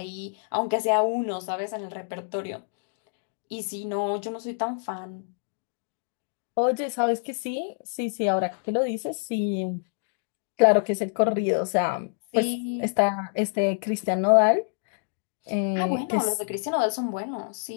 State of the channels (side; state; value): right; silent; digital silence